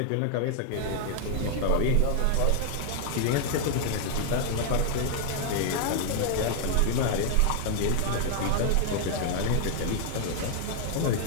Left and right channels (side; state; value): both; different; correlation 0.00